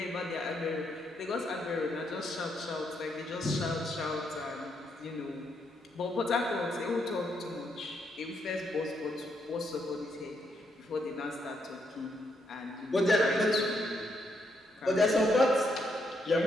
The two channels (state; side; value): normal; both; correlation 0.77